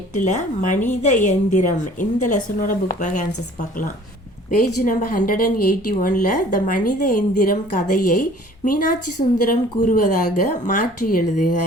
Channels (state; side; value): normal; both; correlation 0.51